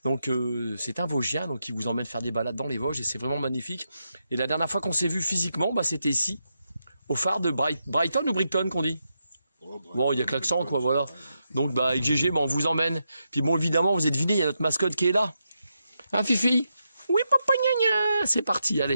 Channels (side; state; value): both; inverted; correlation -0.84